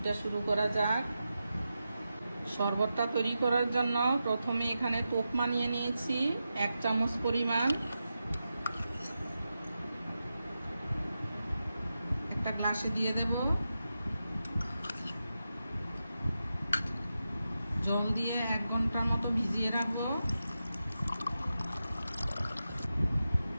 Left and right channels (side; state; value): both; inverted; correlation -0.90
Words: শুরু করা যাক। শরবতটা তৈরি করার জন্য প্রথমে এখানে তোকমা নিয়ে নিয়েছি 1 চামচ পরিমাণ। একটা গ্লাসে দিয়ে দেব, জল দিয়ে 1 ঘন্টার মতো ভিজিয়ে রাখবো।